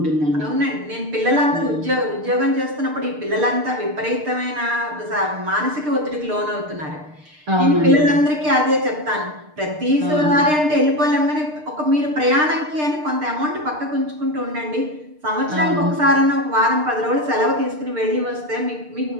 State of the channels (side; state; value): left; late; 6.6 ms